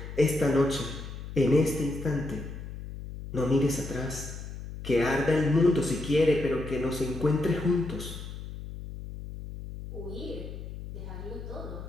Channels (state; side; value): noise; left; hum, 10 dB below the sound